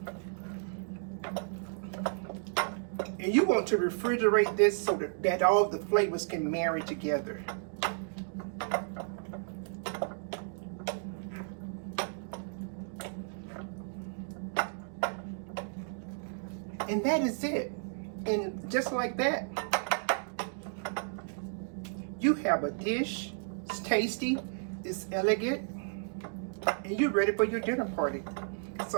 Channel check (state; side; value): silent; left; digital silence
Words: And you want to refrigerate this so that all the flavors can marry together. And that is it. And just like that, you have a dish. It's tasty, it's elegant, and you're ready for your dinner party.